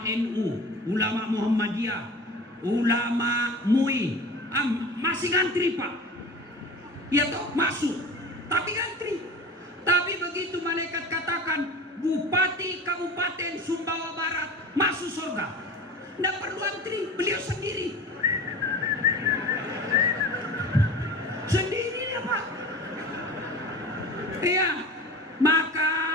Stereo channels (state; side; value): normal; both; correlation 0.36